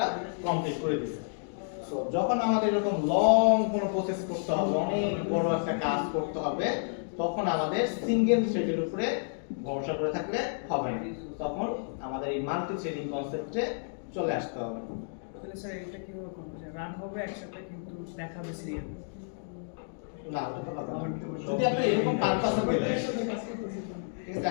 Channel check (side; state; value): right; silent; digital silence